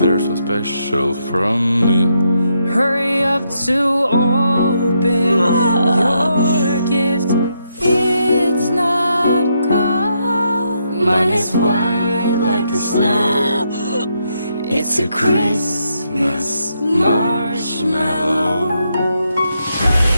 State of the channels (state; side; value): inverted; both; correlation -0.79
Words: so special from me. hurry up to open your gift. It's not cold, mine is white like the snow. It's a Christmas marshmallow.